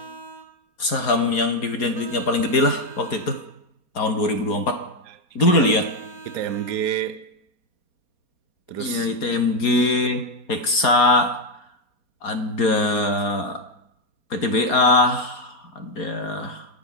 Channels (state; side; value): late; right; 4.3 ms